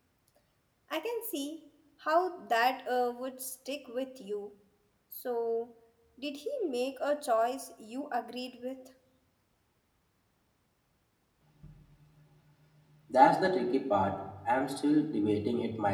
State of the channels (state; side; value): identical; both; correlation 1.00